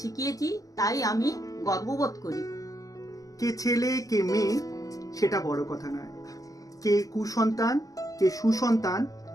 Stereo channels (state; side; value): late; right; 0.17 ms